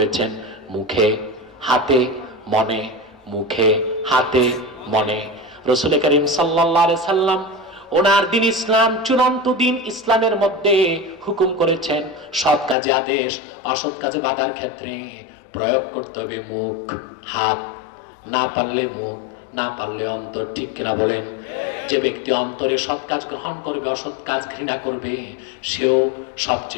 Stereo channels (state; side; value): drops out; right; at 12.8 s